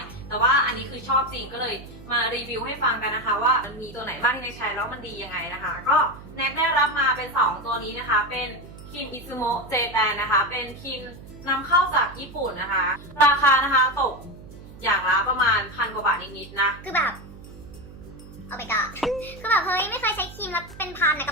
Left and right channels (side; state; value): right; noise; hum, 17 dB below the sound